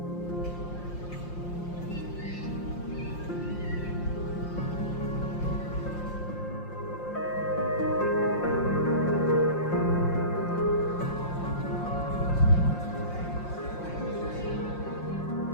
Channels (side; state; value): right; late; 5.7 ms